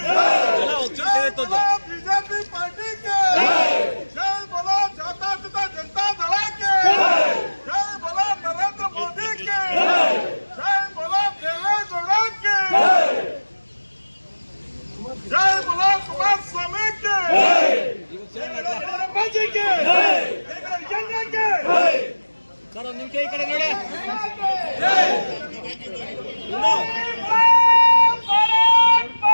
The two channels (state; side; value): inverted; both; correlation -1.00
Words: बीजेपी पार्टी के जय बोलो जनता दल के जय बोलो नरेंद्र मोदी के जय बोलो देवेगौड़ा के जय बोलो कुमार स्वामी के सर ಒಂದು ನಿಮಿಷ ಈ ಕಡೆ ನೋಡಿ